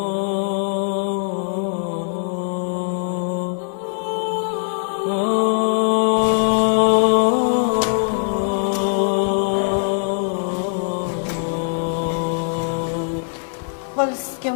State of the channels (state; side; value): silent; right; 59 dB below the other